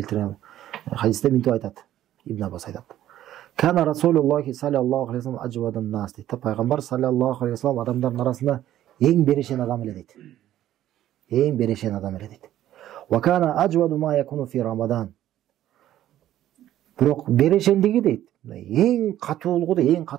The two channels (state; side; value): quieter; left; 12.7 dB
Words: хадисте мынтип айтат. Ибн Аббас айтат. Кана Расулуллахи саллаллаху алейхи вассалам аджвадан нас дейт. Пайгамбар саллаллаху алейхи вассалам адамдардын арасында эң берешен адам эле дейт. Эң берешен адам эле дейт. Ва кана аджваду ма якуну фи Рамадан. Бирок берешендиги дейт. Эң катуулугу да эң